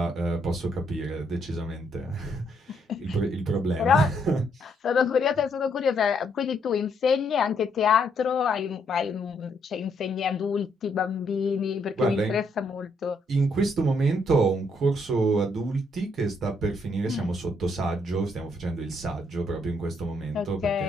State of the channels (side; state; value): both; normal; correlation 0.73